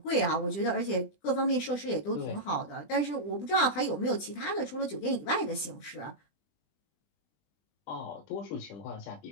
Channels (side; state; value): right; late; 20 ms